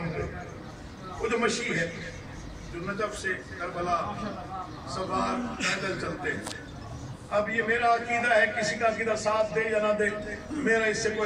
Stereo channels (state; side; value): identical; both; correlation 1.00